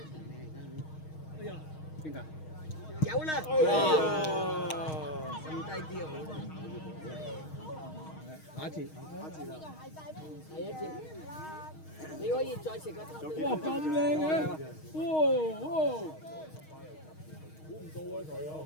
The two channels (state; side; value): late; right; 6.4 ms